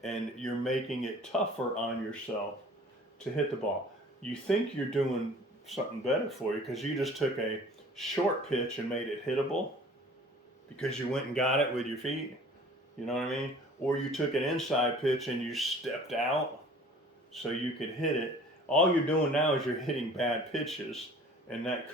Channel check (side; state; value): both; normal; correlation 0.48